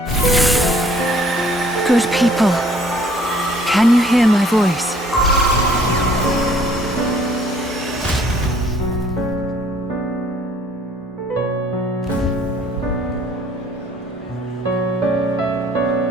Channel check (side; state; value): both; normal; correlation 0.58